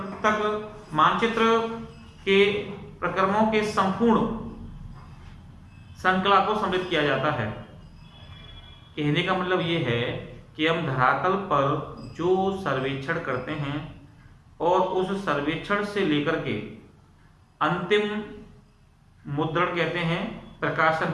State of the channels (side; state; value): both; identical; correlation 1.00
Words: तक मानचित्र के प्रक्रमों के संपूर्ण श्रृंखला को सम्मिलित किया जाता है। कहने का मतलब ये है कि हम धरातल पर जो सर्वेक्षण करते हैं और उस सर्वेक्षण से लेकर के अंतिम मुद्रण कहते हैं प्रकाशन